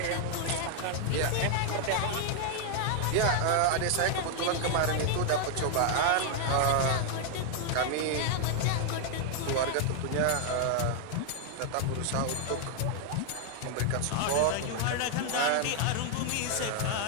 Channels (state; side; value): different; both; correlation 0.00